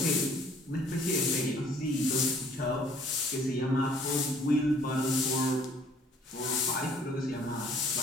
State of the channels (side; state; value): both; normal; correlation 0.58